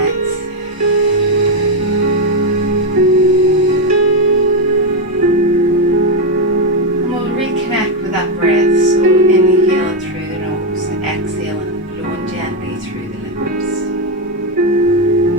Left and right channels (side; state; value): both; normal; correlation 0.06